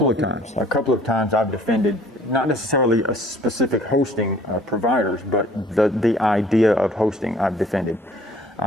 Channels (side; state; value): both; normal; correlation 0.55